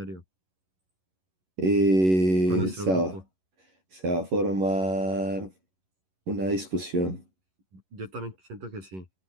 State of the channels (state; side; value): late; left; 11 ms